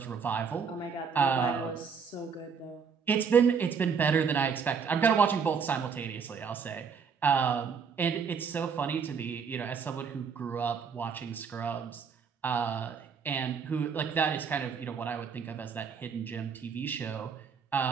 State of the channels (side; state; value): left; quieter; 6.1 dB